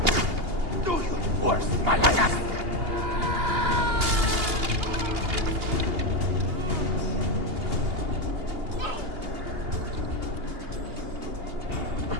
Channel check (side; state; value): left; late; 2.8 ms